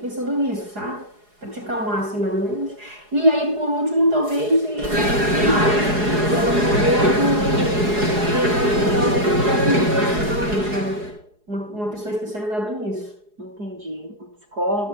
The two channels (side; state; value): left; late; 4.8 ms